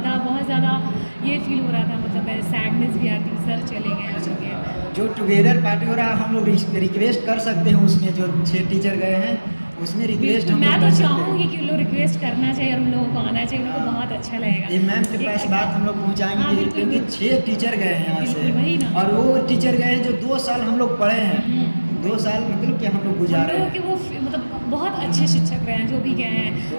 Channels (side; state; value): both; inverted; correlation -1.00